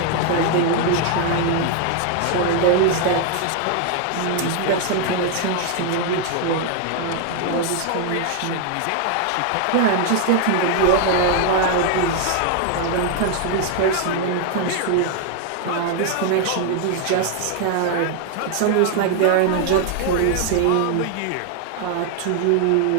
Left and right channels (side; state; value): both; different; correlation 0.00